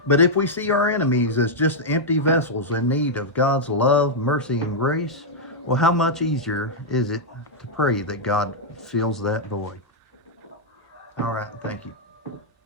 But if we see our enemies as just empty vessels in need of God's love, mercy, and grace, well, how much easier is it to pray that God fills that void? All right, thank you.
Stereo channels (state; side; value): normal; both; correlation -0.05